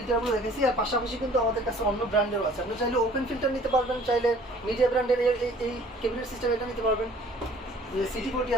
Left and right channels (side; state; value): both; normal; correlation 0.53